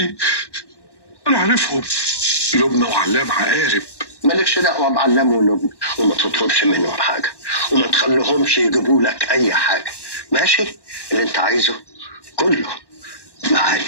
انا عارفهم، لبنى وعلام عقارب. مالكش دعوه بعلام ولبنى، وما تطلبش منهم حاجه، وما تخليهمش يجيبوا لك اي حاجه، ماشي؟ اللي انت عايزه كله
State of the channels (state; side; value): late; right; 1.1 ms